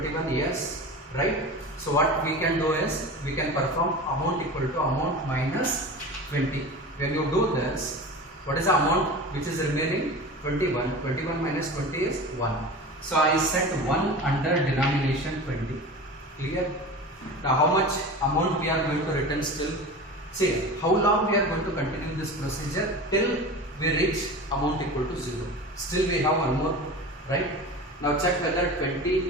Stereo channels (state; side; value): normal; both; correlation 0.32